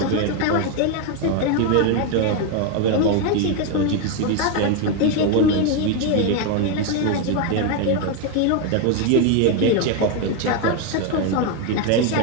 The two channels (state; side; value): different; both; correlation 0.01